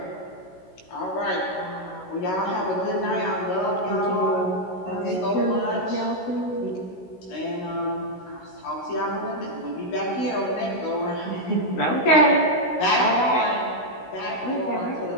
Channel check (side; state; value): right; late; 16 ms